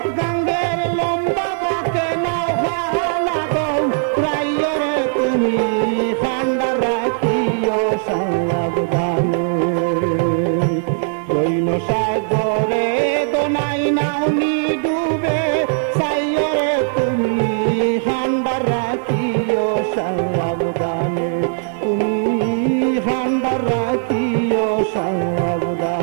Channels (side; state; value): left; silent; digital silence